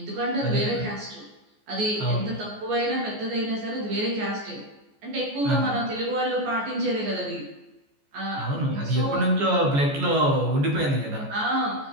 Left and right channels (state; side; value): late; left; 14 ms